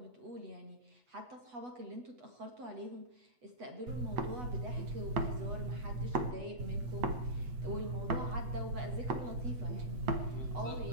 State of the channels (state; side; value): late; left; 8.1 ms